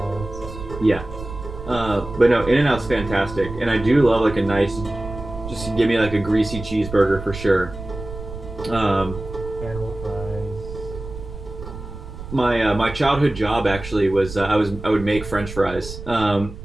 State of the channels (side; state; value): right; noise; rumble, 11 dB below the sound